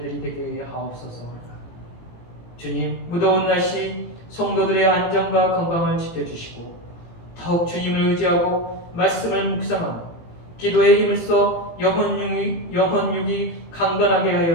되게 하옵소서. 주님, 무더운 날씨 성도들의 안전과 건강을 지켜주시고 더욱 주님을 의지하고 말씀을 묵상하며 기도에 힘을 써 영혼육이 강건하게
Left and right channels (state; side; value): late; right; 18 ms